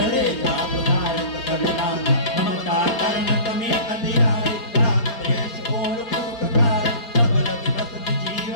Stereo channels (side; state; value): right; late; 4.3 ms